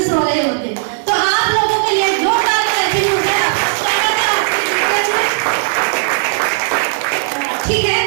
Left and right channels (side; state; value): left; silent; digital silence